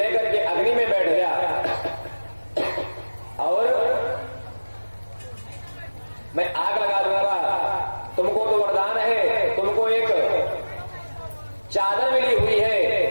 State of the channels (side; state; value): both; inverted; correlation -1.00